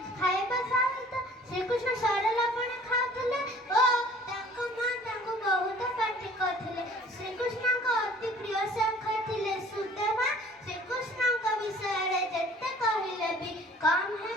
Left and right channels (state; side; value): normal; both; correlation 0.51